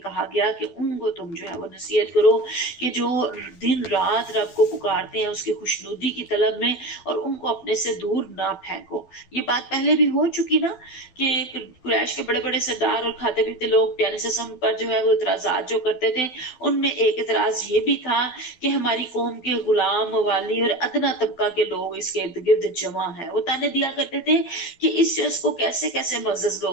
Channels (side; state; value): right; late; 12 ms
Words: گیا کہ ان کو تم جو ہے وہ نصیحت کرو کہ جو دن رات رب کو پکارتے ہیں اس کی خوشنودی کی طلب میں، اور ان کو اپنے سے دور نہ پھینکو۔ یہ بات پہلے بھی ہو چکی نا کہ قریش کے بڑے بڑے سردار اور کھاتے پیتے لوگ پیارے سسم پر جو ہے وہ اعتراضات جو کرتے تھے، ان میں ایک اعتراض یہ بھی تھا کہ ہماری قوم کے غلام، موالی اور ادنا طبقہ کے لوگ اس کے ارد گرد جمع ہیں۔ وہ تانے دیا کرتے تھے کہ اس شخص کو کیسے کیسے معزز